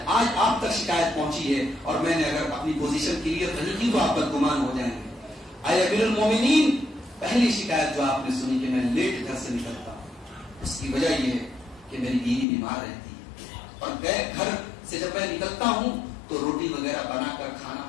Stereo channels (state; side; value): drops out; right; at 12.5 s